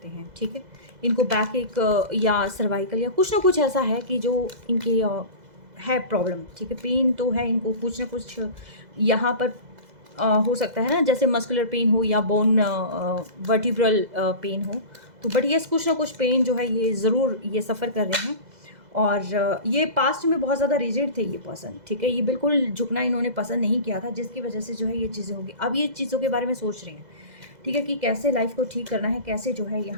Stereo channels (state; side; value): late; left; 2.0 ms